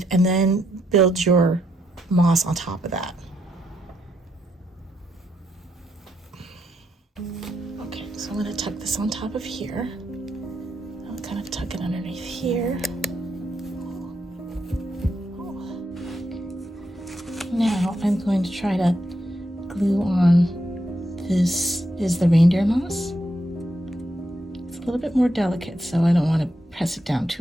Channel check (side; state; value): both; normal; correlation 0.80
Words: and then build your moss on top of that. Okay, so I'm going to tuck this on top of here. I'll kind of tuck it underneath here. Now I'm going to try to glue on, this is the reindeer moss. It's a little bit more delicate, so I don't want to press it down